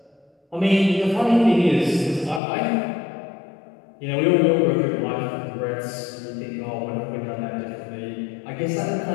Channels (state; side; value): drops out; right; at 2.4 s